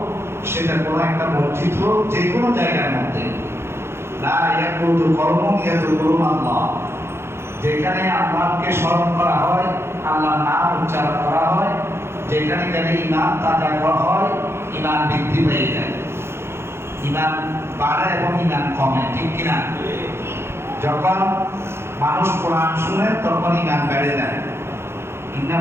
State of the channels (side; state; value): left; late; 0.12 ms